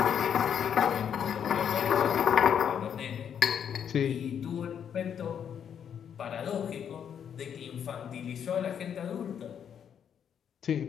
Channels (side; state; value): right; quieter; 8.4 dB